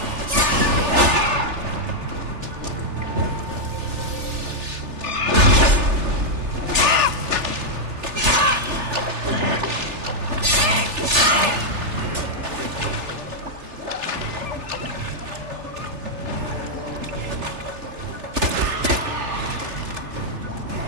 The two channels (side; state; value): left; late; 3.4 ms